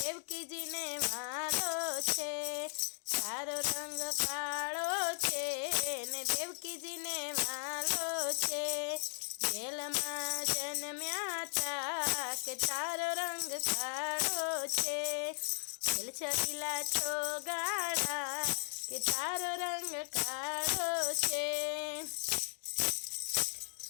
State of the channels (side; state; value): right; silent; digital silence